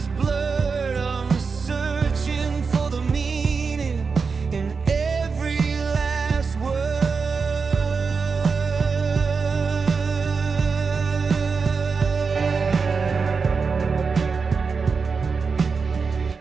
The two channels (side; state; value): left; quieter; 5.0 dB